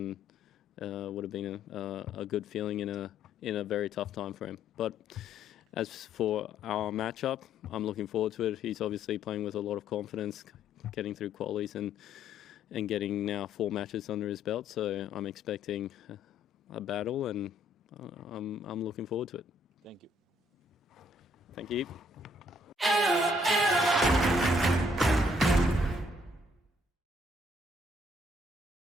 would have been a good feeling in a very tough time for him. But as for our matchup, I'm looking forward to it. He's obviously playing with a lot of confidence, getting through qualies and getting now 4 matches under his belt. So I'm expecting a battle, and I'm looking forward to it. Thank you. Thank you.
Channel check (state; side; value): normal; both; correlation 0.66